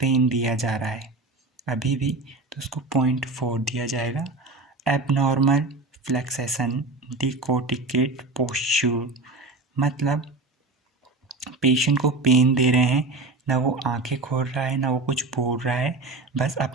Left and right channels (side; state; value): left; quieter; 3.3 dB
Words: दिया जा रहा है अभी भी, तो उसको 0.4 दिया जाएगा। एबनॉर्मल फ्लेक्सेशन डिकोटिकेट पोस्चर, मतलब पेशेंट को पेन दे रहे हैं, ना वो आंखें खोल रहा है ना वो कुछ बोल रहा है, बस